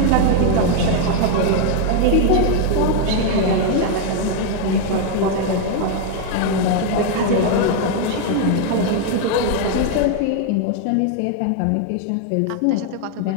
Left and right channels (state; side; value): different; both; correlation 0.00